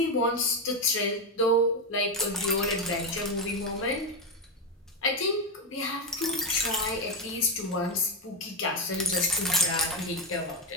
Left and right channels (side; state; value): both; normal; correlation 0.07